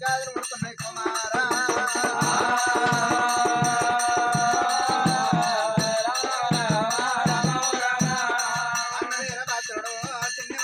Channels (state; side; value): identical; both; correlation 1.00